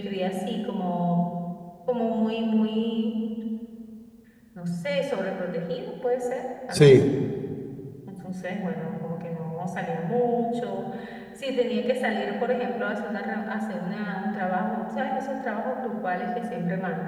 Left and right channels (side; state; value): both; identical; correlation 1.00